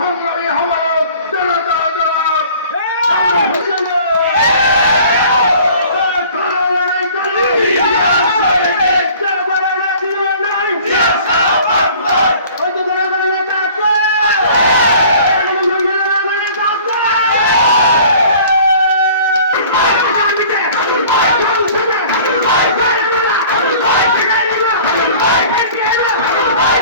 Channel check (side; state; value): both; inverted; correlation -0.48